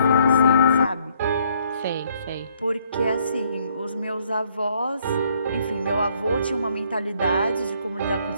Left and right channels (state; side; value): inverted; both; correlation -0.66